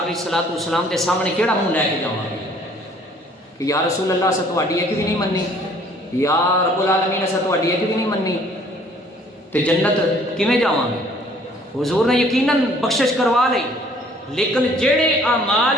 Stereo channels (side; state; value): both; normal; correlation 0.58